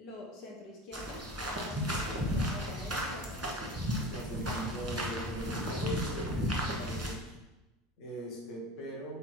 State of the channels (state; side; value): normal; both; correlation 0.35